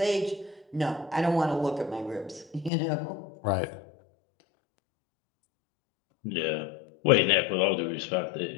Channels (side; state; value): right; drops out; at 2.7 s